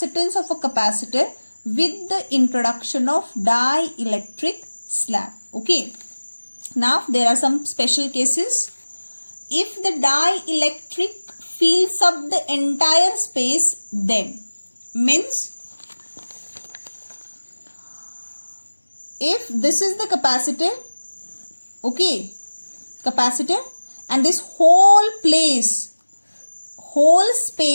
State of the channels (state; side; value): inverted; both; correlation -1.00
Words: of a capacitor with the introduction of dielectric slab. Okay. Now there are some special cases. If the dielectric fills up the entire space, then means if this is the capacitor, okay, capacitor, and this whole